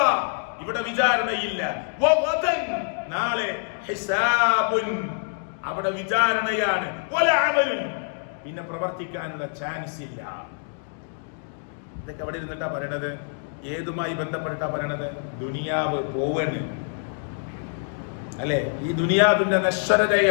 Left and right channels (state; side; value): silent; right; digital silence